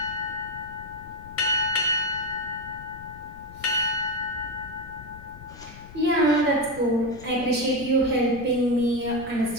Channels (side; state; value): left; noise; rumble, 17 dB below the sound